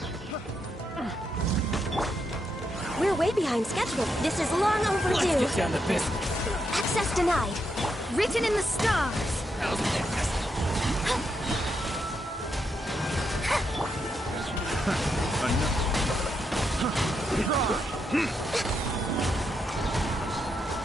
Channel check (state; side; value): normal; both; correlation 0.81